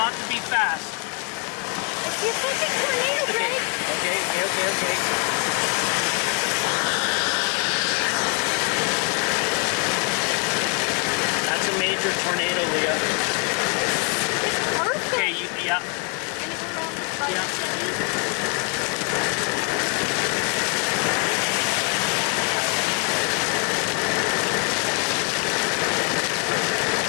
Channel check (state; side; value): quieter; right; 35.6 dB